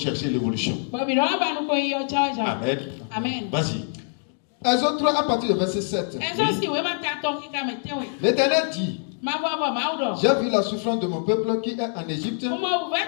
l'évolution. Amen. Vas-y. Exode 3 à partir du verset 7. L'Éternel dit: j'ai vu la souffrance de mon peuple qui est en Égypte.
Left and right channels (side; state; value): right; silent; 62 dB below the other